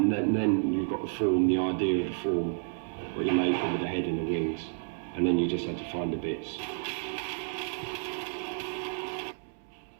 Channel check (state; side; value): silent; left; digital silence